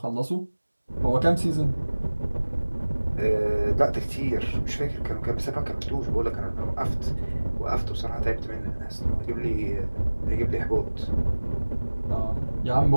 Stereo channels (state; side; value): inverted; both; correlation -1.00